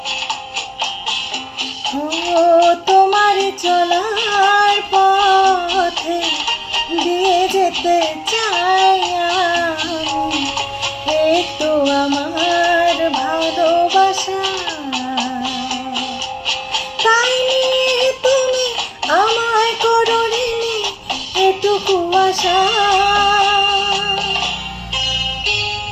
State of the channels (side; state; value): both; identical; correlation 1.00